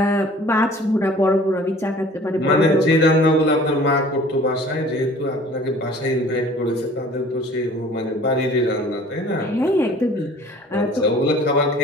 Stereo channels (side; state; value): both; normal; correlation 0.49